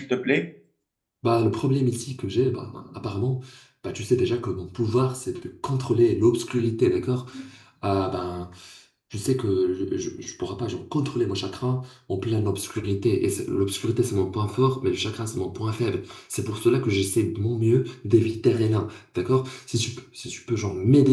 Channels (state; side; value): identical; both; correlation 1.00